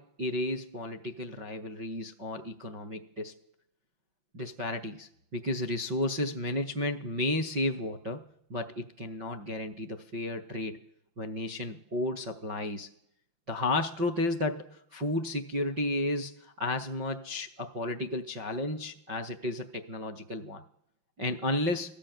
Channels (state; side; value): late; left; 5.8 ms